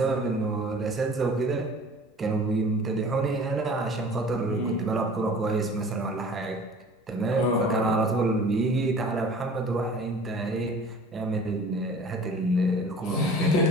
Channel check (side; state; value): both; normal; correlation 0.45